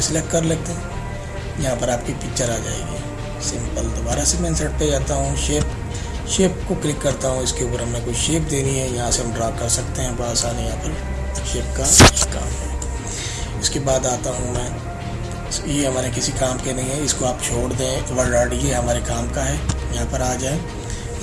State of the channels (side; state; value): both; identical; correlation 1.00